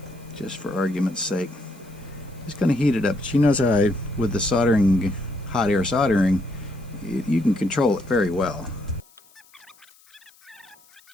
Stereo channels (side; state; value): left; noise; hiss, 29 dB below the sound